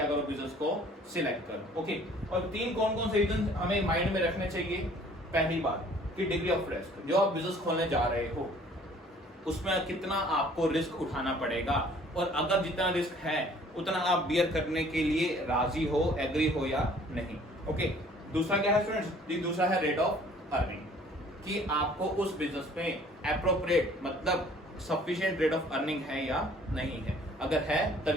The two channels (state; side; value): normal; both; correlation 0.55